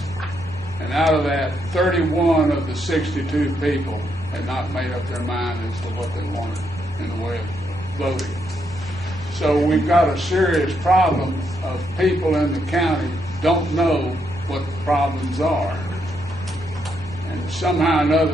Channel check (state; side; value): normal; both; correlation 0.78